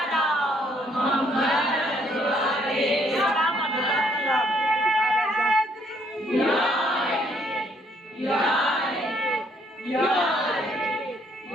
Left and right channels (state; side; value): normal; both; correlation 0.68